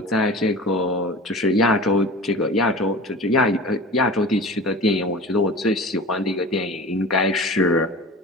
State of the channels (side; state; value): both; normal; correlation 0.36